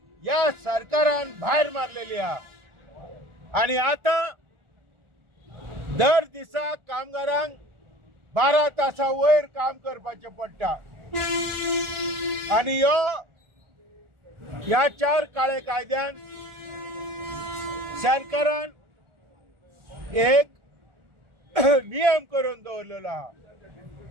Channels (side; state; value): left; late; 1.4 ms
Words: या सरकारान भायर मारलेली आहे आणि आता दर दिसा कामगारांक 12 तासां वयर काम करपाचें पडटा आणि ह्या 4 काळे कायद्यान सरकारान एक नियम करून दवरलेलो आहा.